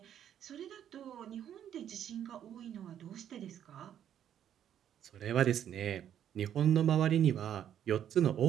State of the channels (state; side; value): quieter; left; 10.0 dB